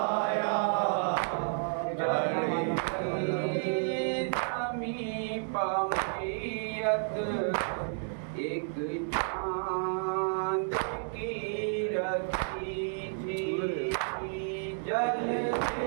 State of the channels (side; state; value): left; silent; digital silence